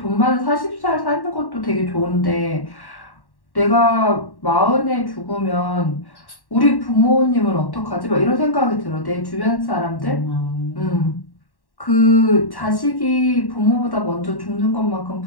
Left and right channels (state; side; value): late; right; 1.1 ms